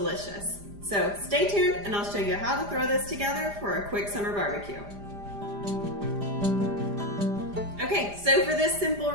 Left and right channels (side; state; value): left; late; 5.0 ms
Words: So stay tuned and I'll show you how to throw this together for a quick summer barbecue. Okay, so for this simple